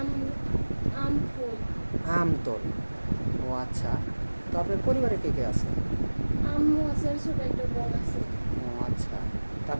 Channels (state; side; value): inverted; both; correlation -1.00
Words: আমফুল। আমতল। ও আচ্ছা। তো আপনার পরিবারে কে কে আছে? আম্মু আছে আর ছোট একটা বোন আছে। ও আচ্ছা। তো